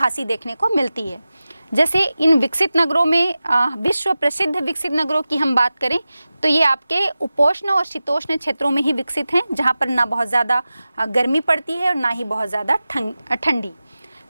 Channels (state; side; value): inverted; both; correlation -0.95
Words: देखने को मिलती है। जैसे इन विकसित नगरों में विश्व प्रसिद्ध विकसित नगरों की हम बात करें तो ये आपके उपोष्ण और शीतोष्ण क्षेत्रों में ही विकसित हैं, जहाँ पर ना बहुत ज़्यादा गर्मी पड़ती है और ना ही बहुत ज़्यादा ठंडी,